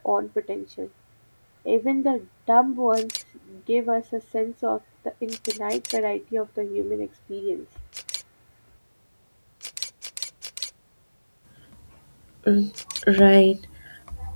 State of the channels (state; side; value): inverted; both; correlation -1.00